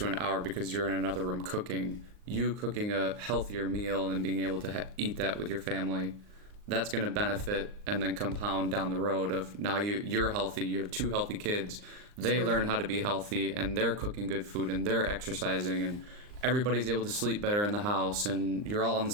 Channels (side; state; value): left; late; 39 ms